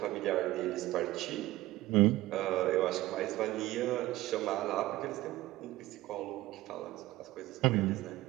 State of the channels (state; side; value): quieter; left; 17.1 dB